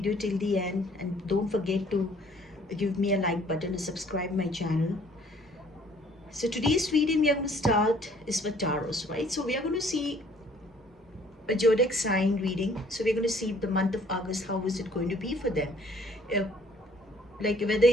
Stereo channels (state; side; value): normal; both; correlation 0.59